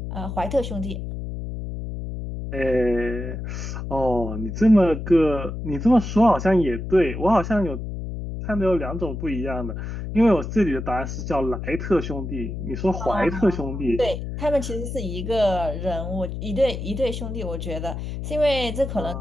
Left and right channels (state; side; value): noise; left; hum, 6 dB below the sound